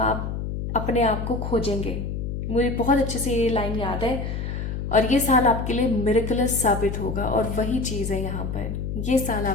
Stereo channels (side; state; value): left; noise; hum, 4 dB below the sound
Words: अपने आप को खोजेंगे। मुझे बहुत अच्छे से ये लाइन याद है। और ये साल आपके लिए मिरेकलस साबित होगा, और वही चीज़ है यहाँ पर, ये साल